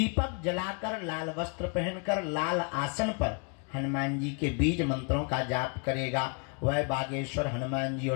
जलाकर, लाल वस्त्र पहनकर, लाल आसन पर हनुमान जी के बीज मंत्रों का जाप करेगा, वह बागेश्वर हनुमान जी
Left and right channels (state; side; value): quieter; right; 35.8 dB